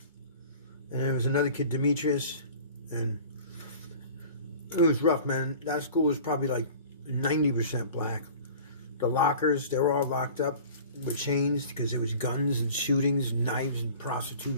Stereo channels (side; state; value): both; inverted; correlation -0.43